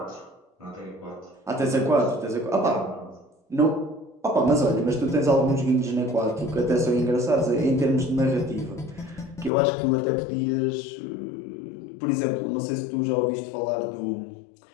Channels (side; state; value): right; drops out; at 9.5 s